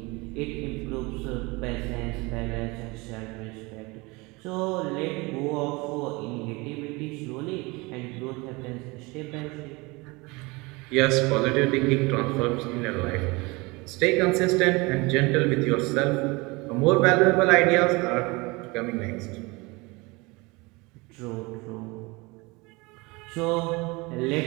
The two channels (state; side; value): quieter; left; 25.0 dB